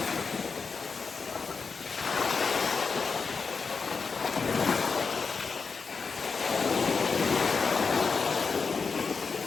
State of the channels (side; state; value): right; quieter; 5.0 dB